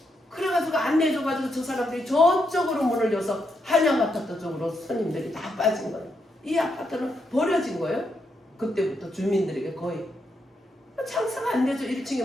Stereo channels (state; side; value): normal; both; correlation 0.81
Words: 그래가지고 안 내줘가지고 저 사람들이 저쪽으로 문을 여서 한양 아파트 쪽으로 손님들이 다 빠진 거예요. 이 아파트는 버려진 거예요. 그때부터 주민들에게 거의 장사가 안 되죠. 1층에